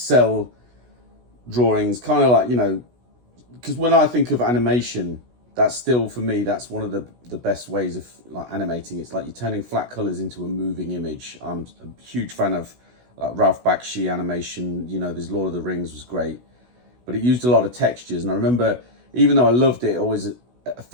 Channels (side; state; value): left; late; 16 ms